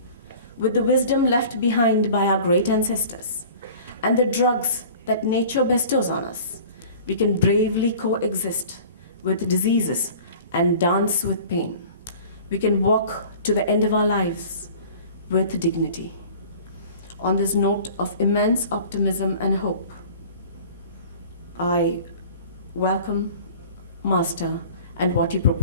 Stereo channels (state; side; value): inverted; both; correlation -0.44